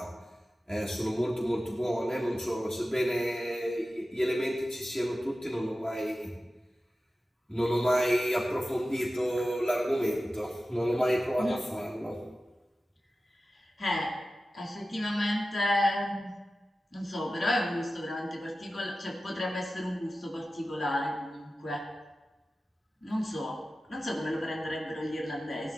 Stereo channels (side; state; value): both; normal; correlation 0.94